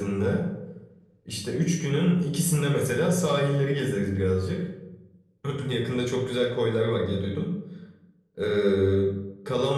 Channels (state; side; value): identical; both; correlation 1.00